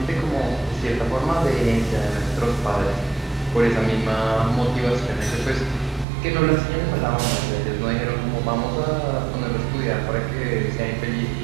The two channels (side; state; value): left; drops out; at 6.1 s